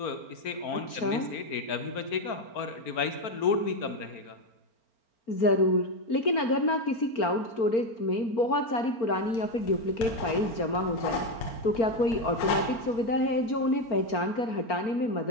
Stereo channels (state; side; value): late; right; 4.4 ms